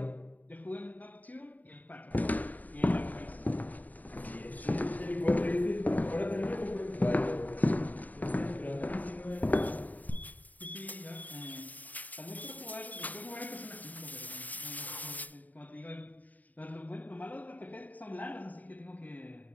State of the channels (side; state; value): right; late; 0.079 ms